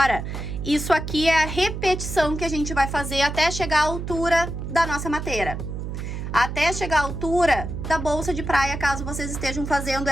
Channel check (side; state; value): right; noise; hum, 6 dB below the sound